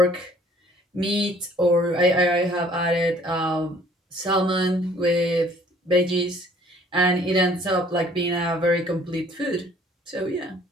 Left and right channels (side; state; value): both; normal; correlation 0.57